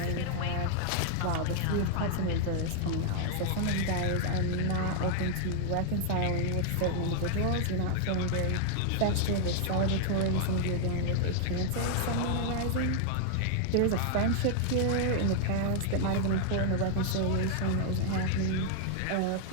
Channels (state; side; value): different; both; correlation 0.00